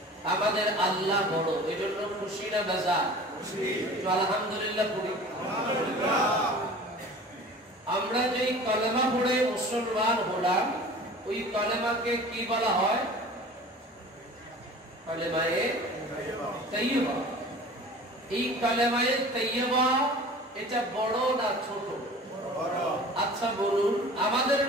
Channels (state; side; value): normal; both; correlation 0.42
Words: আমাদের আল্লাহ বড়, এজন্য খুশি না বেজার? আলহামদুলিল্লাহ পড়ি। আমরা যেই কলেমা পড়ে মুসলমান হলাম, ওই কলেমাকে কি বলা হয়? কলেমায়ে তাইয়্যিবা। এই কলেমায়ে তাইয়্যিবা এটা বড় না ছোট? আচ্ছা বলুন, আমাদের